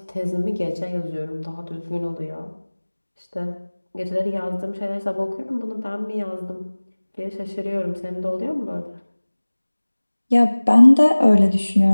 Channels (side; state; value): both; inverted; correlation -1.00